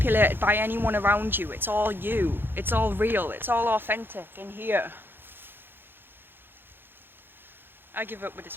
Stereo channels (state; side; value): late; left; 0.10 ms